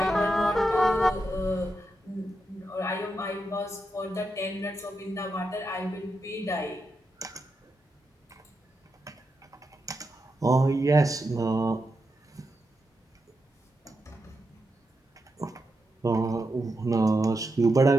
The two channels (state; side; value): normal; both; correlation 0.86